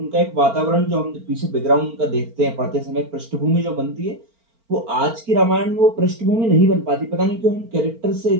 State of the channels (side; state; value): left; late; 4.4 ms